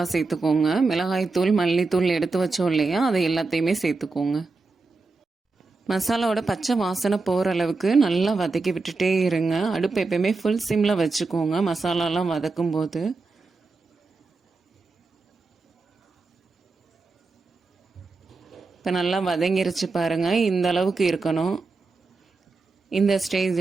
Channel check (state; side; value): quieter; left; 3.8 dB